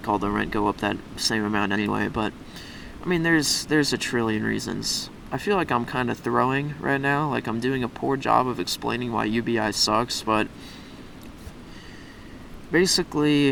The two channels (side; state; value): both; identical; correlation 1.00